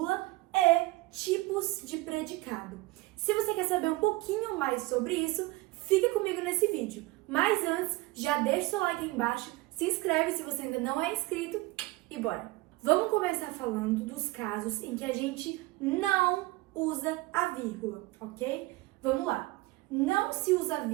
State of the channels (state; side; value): quieter; left; 20.5 dB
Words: e tipos de predicado. Se você quer saber um pouquinho mais sobre isso, fica comigo nesse vídeo. Mas antes, já deixa o seu like aí embaixo, se inscreve se você ainda não é inscrito e bora! Vamos começar falando dos casos em que a gente não usa a vírgula, ok? Vamos lá. Não se usa